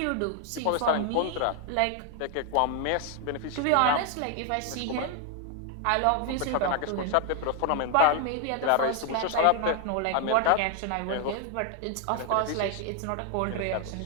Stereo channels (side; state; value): both; different; correlation 0.01